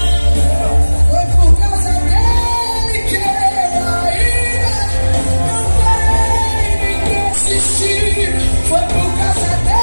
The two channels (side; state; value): both; inverted; correlation -1.00